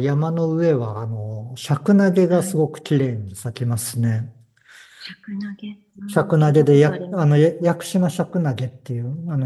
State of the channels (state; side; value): identical; both; correlation 1.00